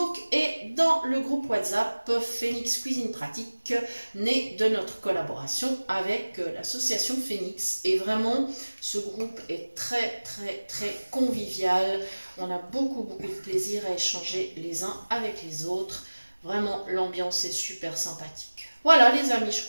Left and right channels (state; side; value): inverted; both; correlation -1.00